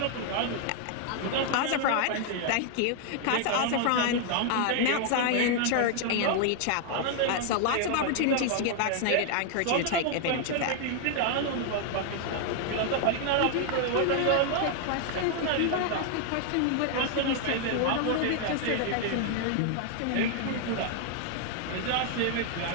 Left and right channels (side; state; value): both; different; correlation 0.00